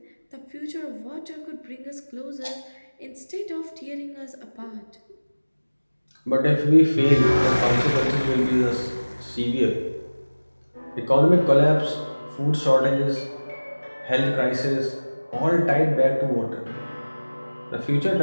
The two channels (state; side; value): inverted; both; correlation -1.00